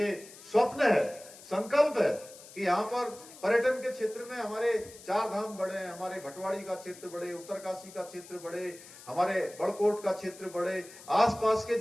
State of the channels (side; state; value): left; noise; hiss, 19 dB below the sound